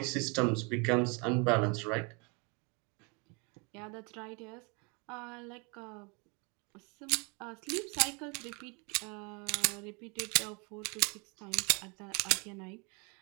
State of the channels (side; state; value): left; quieter; 31.9 dB